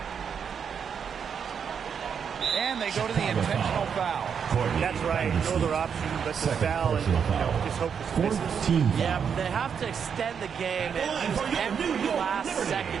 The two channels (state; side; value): quieter; left; 7.1 dB